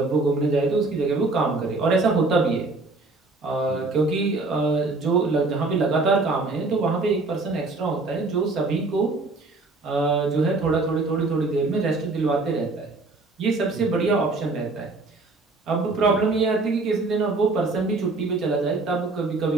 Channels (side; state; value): left; quieter; 3.5 dB